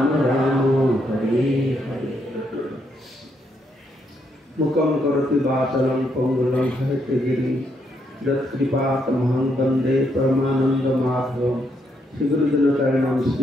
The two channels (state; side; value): normal; both; correlation 0.76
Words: राम हरे हरे मुखम करोति वाचालं पंगुलं हरितगिरि यत्कृपातमहं वन्दे परमानन्दमाधवं श्रीगुरुजनचरणं